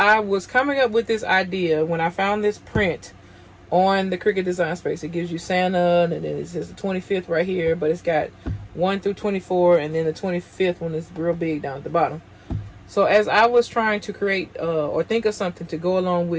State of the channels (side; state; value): both; identical; correlation 1.00